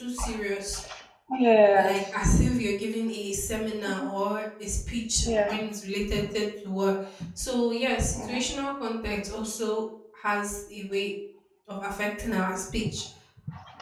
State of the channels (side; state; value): both; identical; correlation 1.00